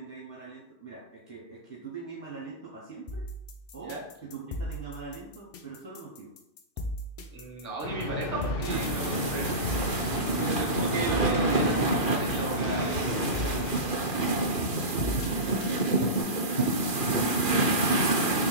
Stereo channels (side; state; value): right; late; 2.4 ms